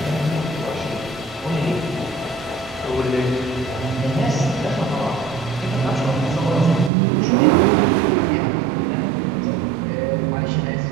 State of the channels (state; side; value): drops out; left; at 6.9 s